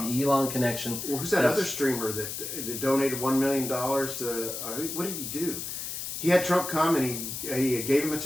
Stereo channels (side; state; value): left; noise; hiss, 6 dB below the sound